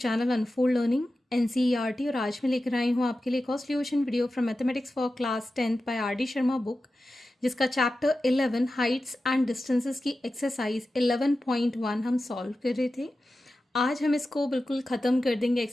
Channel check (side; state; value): both; normal; correlation 0.93